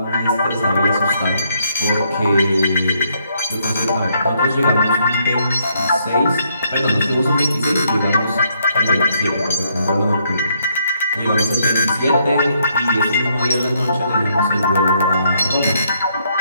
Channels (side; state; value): both; inverted; correlation -0.72